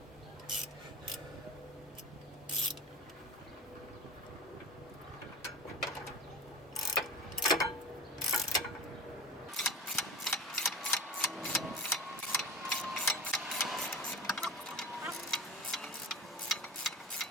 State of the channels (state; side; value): normal; both; correlation 0.32